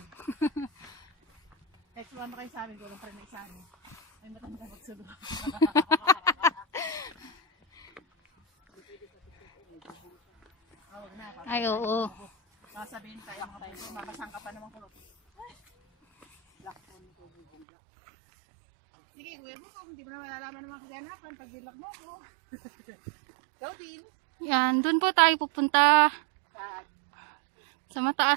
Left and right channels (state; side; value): drops out; left; at 17.7 s